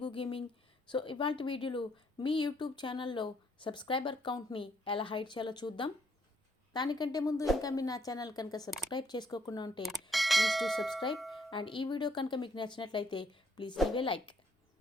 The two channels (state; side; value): normal; both; correlation 0.68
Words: gaming. So ఇవాళ వీడియోలో మీ యూట్యూబ్ ఛానల్లో సబ్స్క్రైబర్ కౌంట్ని ఎలా హైడ్ చేయాలో చూద్దాం. దానికంటే ముందు ఇంకా మీరు నా ఛానల్ కనుక సబ్స్క్రైబ్ చేసుకోకుండా ఉంటే ప్లీజ్ టు సబ్స్క్రైబ్. అండ్ ఈ వీడియో కనుక మీకు నచ్చినట్లయితే please leave a like.